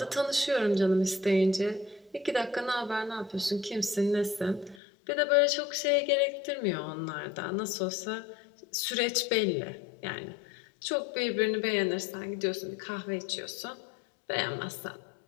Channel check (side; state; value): right; drops out; at 4.8 s